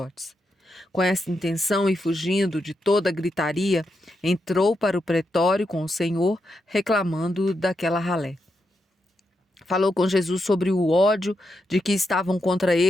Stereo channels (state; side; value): normal; both; correlation 0.84